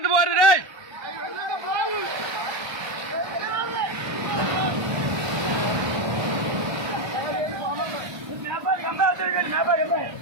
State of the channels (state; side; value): late; left; 1.3 ms